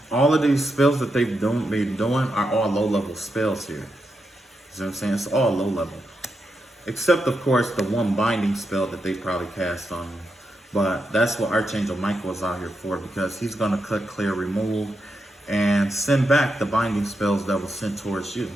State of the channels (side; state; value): both; normal; correlation 0.85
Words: all of these spells that they've been doing are all low-level spells here. See what I'm saying? It's all low-level. Except, of course, the one binding spell that they probably cast on me. But that's what Archangel Michael is out here for, because he's going to cut, clear, remove, and send back the binding spells that were sent towards you.